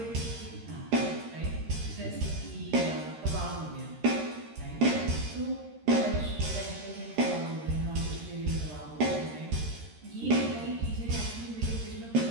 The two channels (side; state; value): left; late; 13 ms